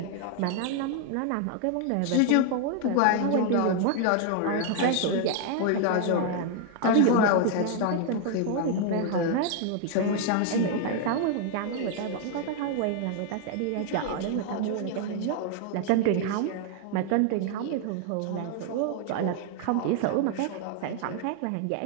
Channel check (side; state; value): both; different; correlation 0.00